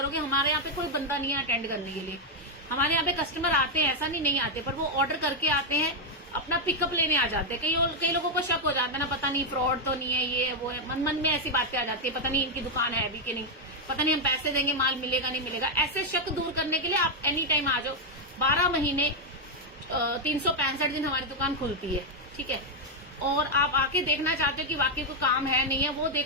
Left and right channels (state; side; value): normal; both; correlation 0.00